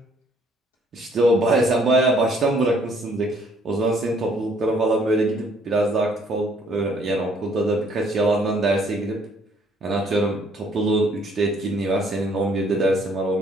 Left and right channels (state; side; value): normal; both; correlation 0.63